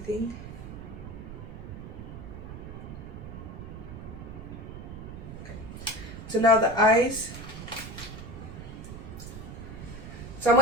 Okay. So now the eyes. So I'm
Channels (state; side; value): noise; right; rumble, 10 dB below the sound